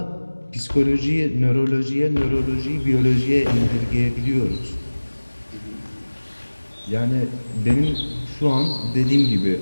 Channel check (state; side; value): inverted; both; correlation -1.00